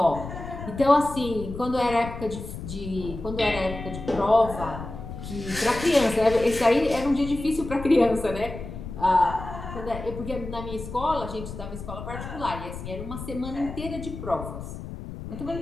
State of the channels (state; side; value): noise; left; rumble, 10 dB below the sound